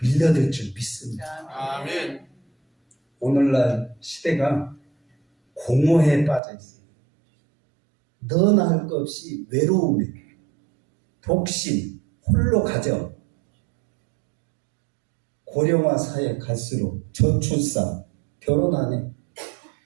밀려들 줄 믿습니다. 아멘. 오늘날 시대가 공허에 빠져 있어요. 너나 할 것 없이 외로움에, 독신, 홀로 가정, 고령화 사회 갈수록 저출산, 결혼 안 해.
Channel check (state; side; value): drops out; left; at 6.4 s